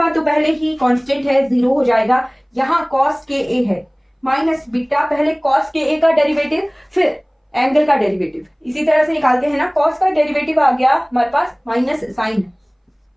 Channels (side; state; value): both; identical; correlation 1.00